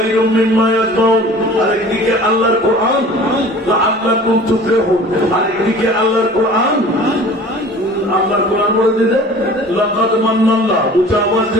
মিম্মা ইয়াসমাউন, আরেকদিকে আল্লাহর কোরআন লাআল্লাকুম তুফলিহুন, আরেকদিকে আল্লাহর কোরআন বলে দিতে লাকাদ মান্নাল্লাহ। উচ্চ আওয়াজ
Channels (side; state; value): both; normal; correlation 0.44